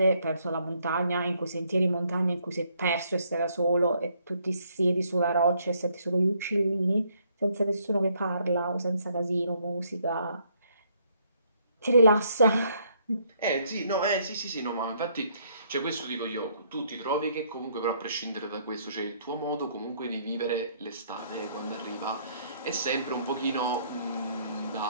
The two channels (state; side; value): inverted; both; correlation -0.68